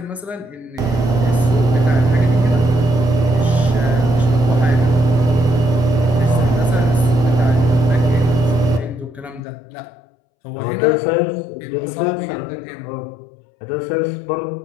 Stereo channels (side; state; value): right; drops out; at 9.4 s